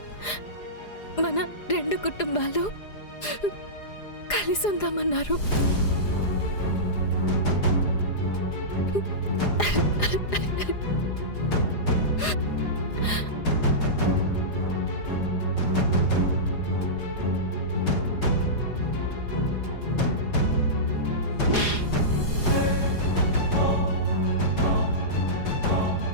మన 2 కుటుంబాలు కలిసి ఉందామన్నారు.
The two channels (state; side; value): late; right; 4.9 ms